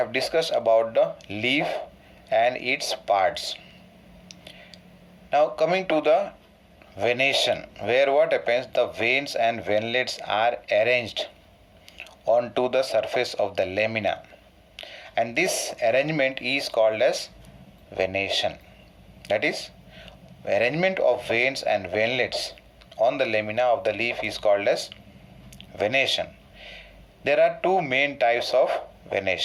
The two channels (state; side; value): identical; both; correlation 1.00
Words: discussed about the leaf and its parts. Now coming to the venation, where what happens, the veins and venlets are arranged onto the surface of the lamina, and this arrangement is called as venation. That is, arrangement of veins and venlets on the lamina of the leaf is called as venation. There are two main types of